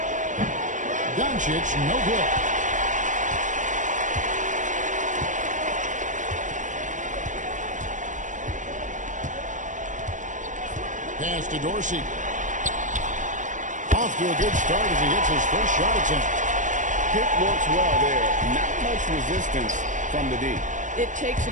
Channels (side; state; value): left; late; 0.37 ms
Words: Doncic, no good. Pass to Dorsey. Off to a good start as he hits his first shot attempt. Pick works well there. Not much resistance from the D. It takes